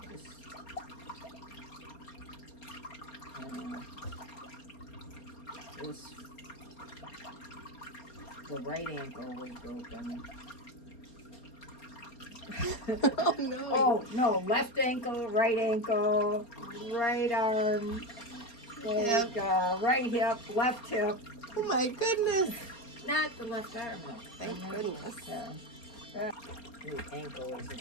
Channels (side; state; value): right; late; 4.3 ms